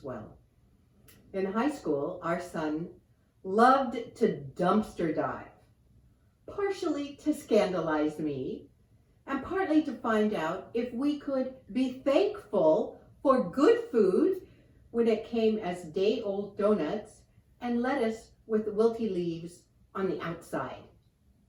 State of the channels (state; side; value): identical; both; correlation 1.00